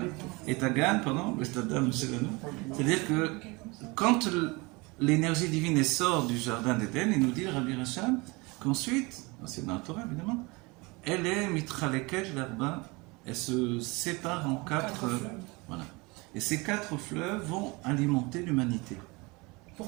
et agan, pardon, c'est-à-dire que quand l'énergie divine sort du jardin d'Éden, il nous dit, Rabbi Racham, qu'ensuite, c'est dans la Torah évidemment, elle est mitraleket l'arba, elle se sépare en quatre. Voilà. Et ces 4 fleuves vont alimenter l'humanité.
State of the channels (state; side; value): quieter; left; 25.7 dB